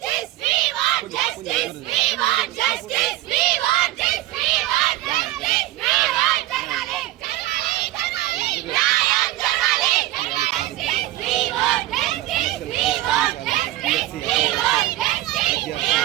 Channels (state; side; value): quieter; left; 15.9 dB